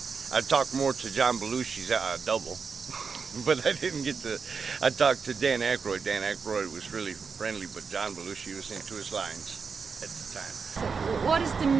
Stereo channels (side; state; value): left; quieter; 5.4 dB